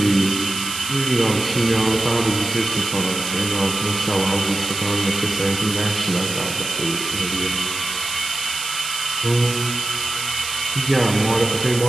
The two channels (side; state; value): right; noise; hiss, 6 dB below the sound